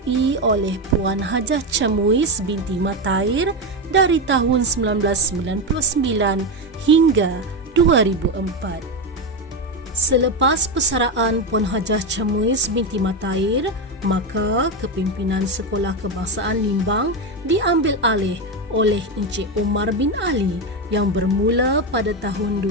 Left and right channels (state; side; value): normal; both; correlation 0.12